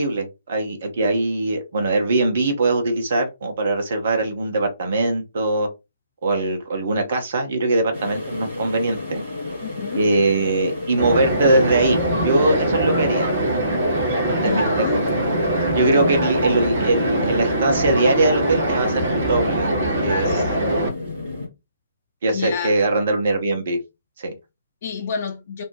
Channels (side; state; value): both; inverted; correlation -0.68